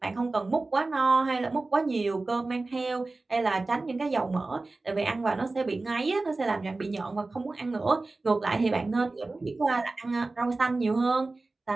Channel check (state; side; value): quieter; left; 3.3 dB